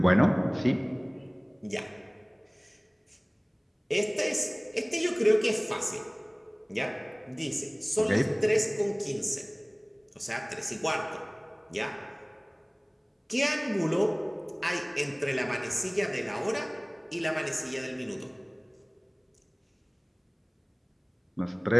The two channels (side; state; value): both; identical; correlation 1.00